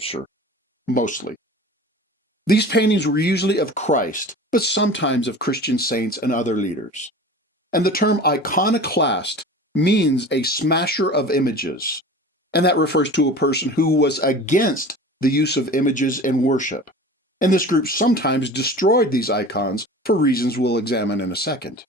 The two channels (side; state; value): both; normal; correlation 0.38